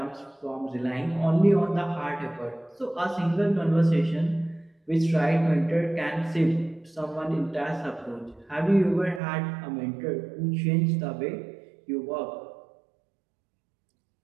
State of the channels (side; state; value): left; drops out; at 9.2 s